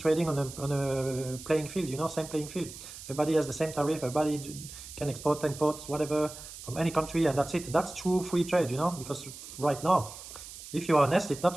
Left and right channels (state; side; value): noise; right; hiss, 13 dB below the sound